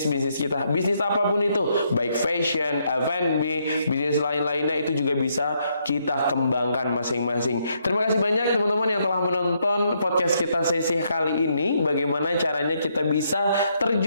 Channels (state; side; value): inverted; both; correlation -0.75